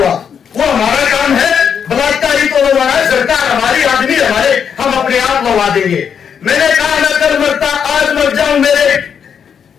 वो हमारा काम है, बलात्कारी तो लगा है सरकार, हमारी आदमी हमारे, हम अपने आप लगा देंगे। मैंने कहा मैं कल मरता आज मर जाऊं, मेरे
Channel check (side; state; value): right; quieter; 7.4 dB